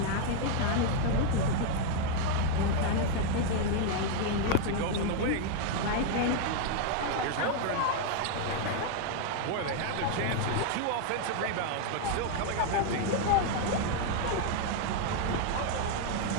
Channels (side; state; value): both; different; correlation 0.00